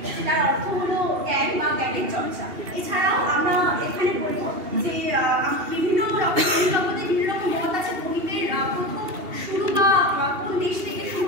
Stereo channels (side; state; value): left; late; 2.8 ms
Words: যেটার অর্থ হলো জ্ঞান বা জ্ঞানের চর্চা। এছাড়াও আমরা এখানে বলবো যে বিভিন্ন রকম জগতে বিভিন্ন রকম মত আছে গণিতের প্রথম শুরু বা কোন দেশ থেকে শুরু